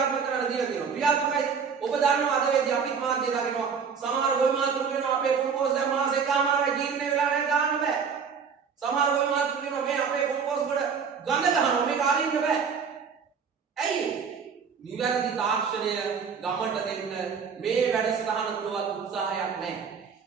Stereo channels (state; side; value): quieter; left; 6.2 dB